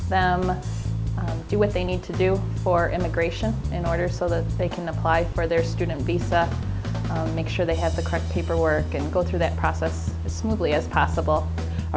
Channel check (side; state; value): both; identical; correlation 1.00